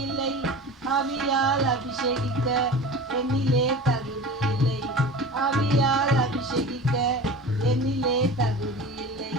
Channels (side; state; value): both; normal; correlation 0.34